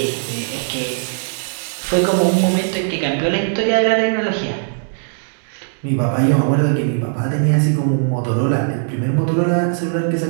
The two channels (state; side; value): silent; left; digital silence